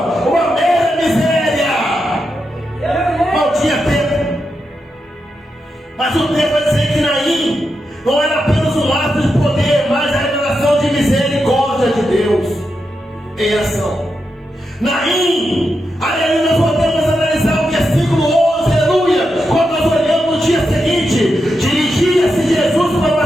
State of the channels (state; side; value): normal; both; correlation 0.86